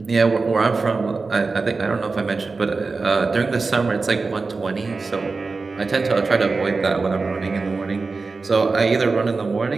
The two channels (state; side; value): quieter; left; 4.1 dB